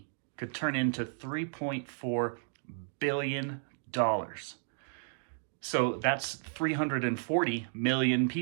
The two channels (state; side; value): silent; left; digital silence